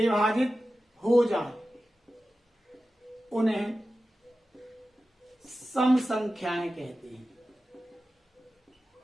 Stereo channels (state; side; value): normal; both; correlation 0.94